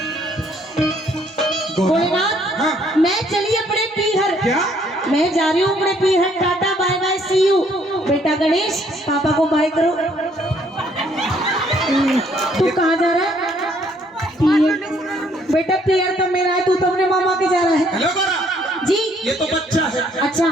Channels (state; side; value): normal; both; correlation 0.65